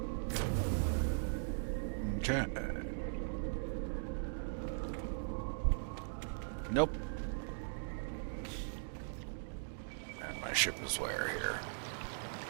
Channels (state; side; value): silent; left; digital silence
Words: Okay. Nope. And my ship is where here?